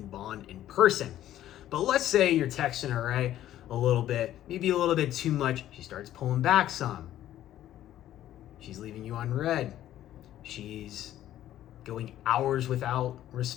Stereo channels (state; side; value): quieter; right; 12.6 dB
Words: bond in person. But let's say you're texting her, right? A little bit, maybe a little bit too much. She starts pulling back some. She's leaving you on red. She's going hours without